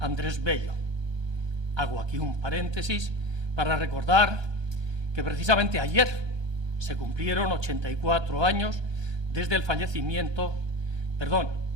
Bello. Hago aquí un paréntesis para recordar que precisamente ayer se cumplieron 84 años desde el fallecimiento,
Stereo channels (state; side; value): late; left; 1.2 ms